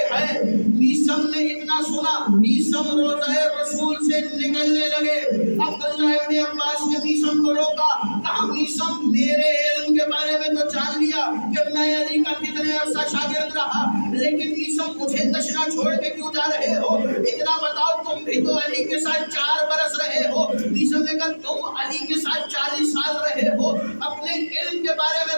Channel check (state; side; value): inverted; both; correlation -1.00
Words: ہیں۔ میثم نے اتنا سنا، میثم روضہ رسول سے نکلنے لگے۔ عبداللہ ابن عباس نے میثم کو روکا، کہا میثم میرے علم کے بارے میں تو جان لیا کہ میں علی کا کتنے عرصہ شاگرد رہا، لیکن میثم مجھے تشنا چھوڑ کے کیوں جا رہے ہو؟ اتنا بتاؤ تم بھی تو علی کے ساتھ 4 برس رہے ہو۔ میثم نے کہا تم علی کے ساتھ 40 سال رہے ہو، اپنے علم کے بارے